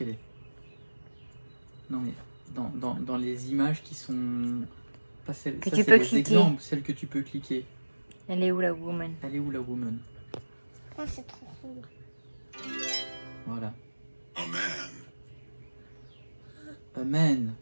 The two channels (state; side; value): inverted; both; correlation -1.00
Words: est? Non mais, dans les images qui sont... Pas celles, que ça, tu peux les cliquer. Exemples, celles que tu peux cliquer. Elle est où la woman? Elle est où la woman? Oh, c'est trop cool. Voilà. A man. A man.